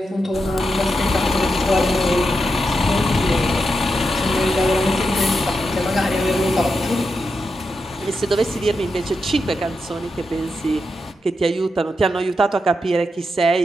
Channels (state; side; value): normal; both; correlation 0.86